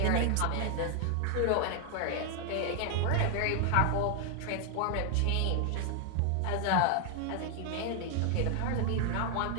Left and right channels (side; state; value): both; different; correlation 0.00